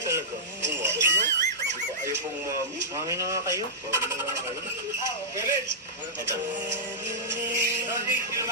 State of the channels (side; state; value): both; normal; correlation -0.13